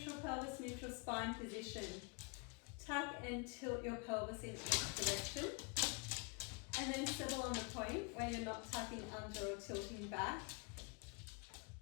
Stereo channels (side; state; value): right; quieter; 33.5 dB